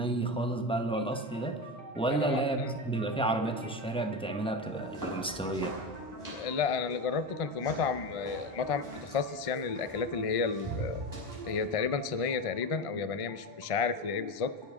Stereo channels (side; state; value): both; normal; correlation 0.20